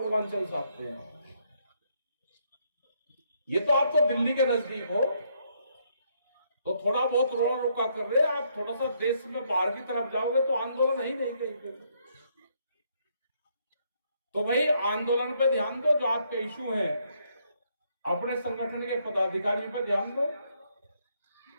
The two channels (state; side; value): inverted; both; correlation -0.72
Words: से आते हैं। ये तो आप तो दिल्ली के नजदीक हो, तो थोड़ा बहुत रोड़ा रुका कर रहे हैं। आप थोड़ा सा देश में बाहर की तरफ जाओगे तो आंदोलन ही नहीं कहीं पे। तो भाई आंदोलन पे ध्यान दो, जो आपके इशू हैं अपने संगठन के पदाधिकारियों पर ध्यान दो,